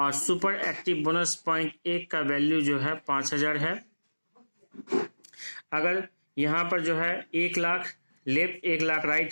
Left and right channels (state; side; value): inverted; both; correlation -1.00